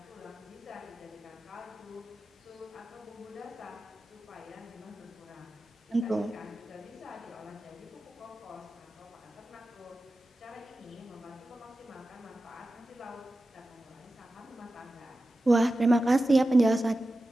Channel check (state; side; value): normal; both; correlation 0.93